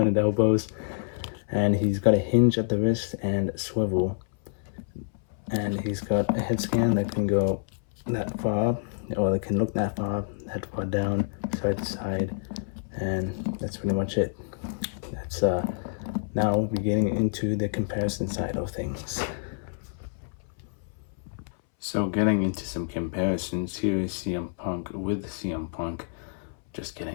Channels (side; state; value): right; silent; 59 dB below the other